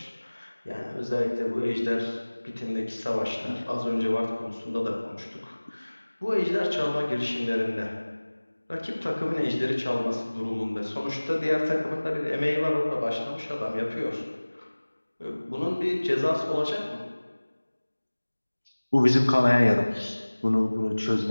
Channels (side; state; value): both; inverted; correlation -1.00